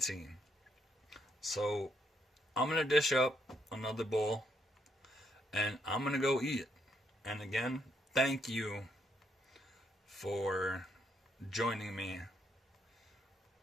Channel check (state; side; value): normal; both; correlation 0.74